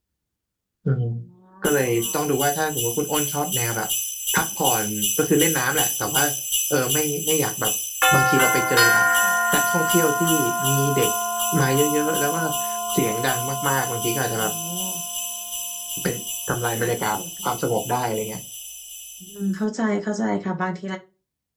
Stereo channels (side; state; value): both; identical; correlation 1.00